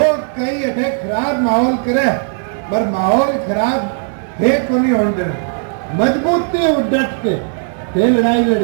कई अठे खराब माहौल करे पर माहौल खराब है को नहीं होने देना। मजबूती डट के लड़ाई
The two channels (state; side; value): silent; left; 58 dB below the other